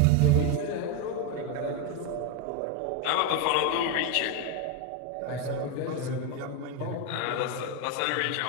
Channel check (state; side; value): different; both; correlation 0.02